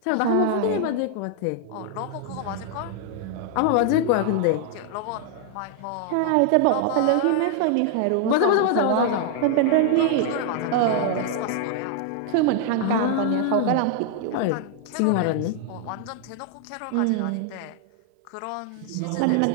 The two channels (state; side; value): different; both; correlation 0.00